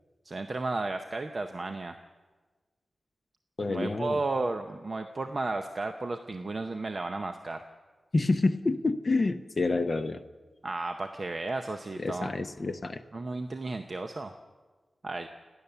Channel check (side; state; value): both; normal; correlation 0.93